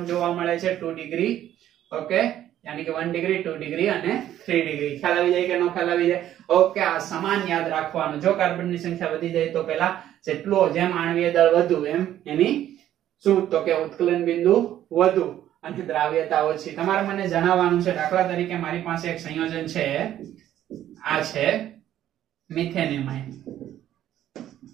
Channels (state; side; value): quieter; left; 12.0 dB